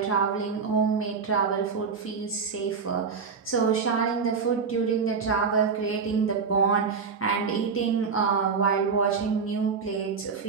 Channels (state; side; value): quieter; left; 5.5 dB